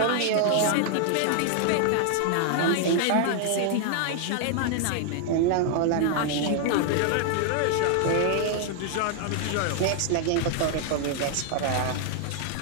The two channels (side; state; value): both; different; correlation 0.00